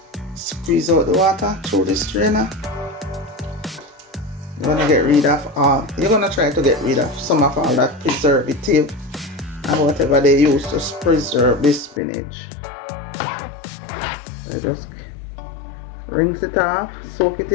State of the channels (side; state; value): right; drops out; at 12.0 s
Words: Squeeze out the water through the strainer. You're gonna get rid of all. You're gonna try to get rid of some of all that preservative and whatever they use to preserve the spinach. So just rinse it off, soak it